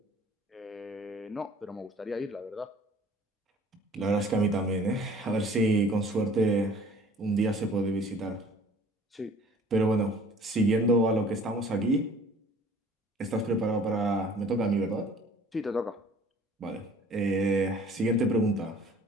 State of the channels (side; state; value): both; normal; correlation 0.51